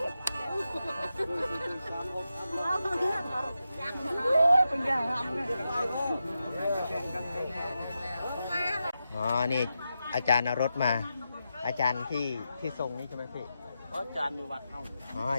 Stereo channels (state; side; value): inverted; both; correlation -0.88